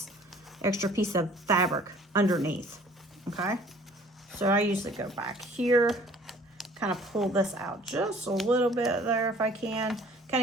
fabric underneath. Okay, so I usually go back here, kind of pull this out just a little bit there if I can, kind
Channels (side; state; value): both; normal; correlation 0.53